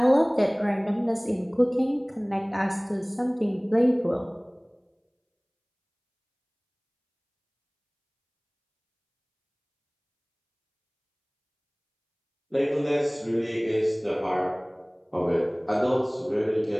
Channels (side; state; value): both; identical; correlation 1.00